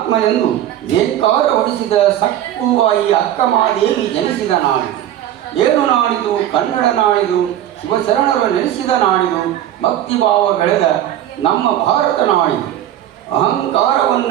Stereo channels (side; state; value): left; quieter; 11.9 dB